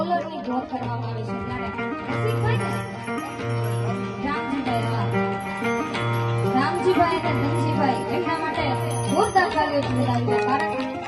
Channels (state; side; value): identical; both; correlation 1.00